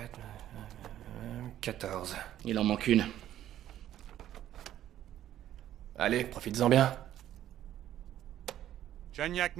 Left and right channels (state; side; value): quieter; left; 12.1 dB